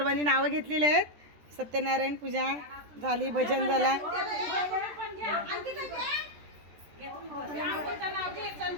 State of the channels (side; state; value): left; late; 13 ms